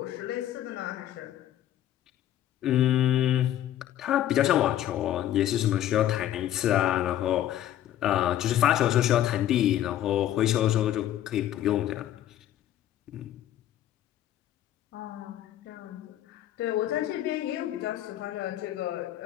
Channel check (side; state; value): right; quieter; 12.2 dB